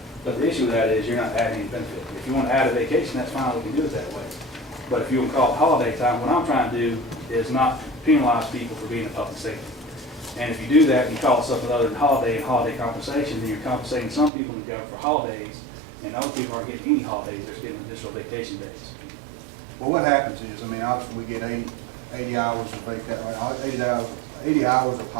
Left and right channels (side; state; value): left; drops out; at 14.3 s